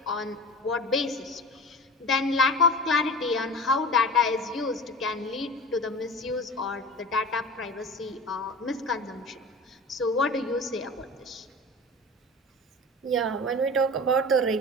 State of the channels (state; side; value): normal; both; correlation 0.35